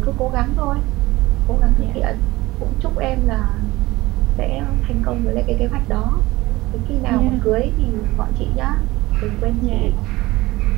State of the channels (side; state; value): left; quieter; 19.4 dB